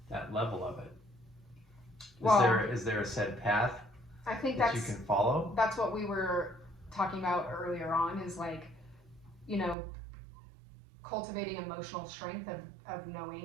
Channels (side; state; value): left; drops out; at 9.8 s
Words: level of it? Is there a set path? I think that you can follow? That's what we were talking about earlier on, is like, you know, cultivating emotional strength of